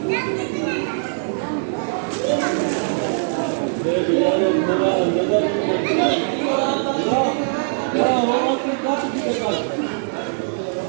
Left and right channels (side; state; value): left; silent; digital silence